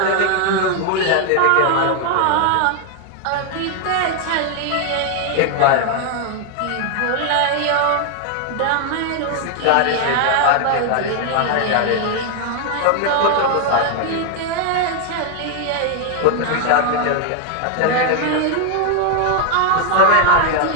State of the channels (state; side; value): different; both; correlation 0.00